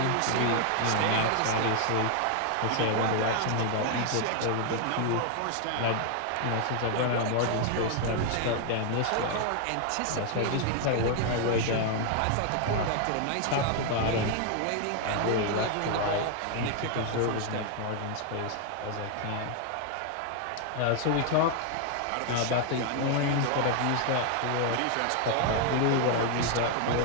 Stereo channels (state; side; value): different; both; correlation 0.00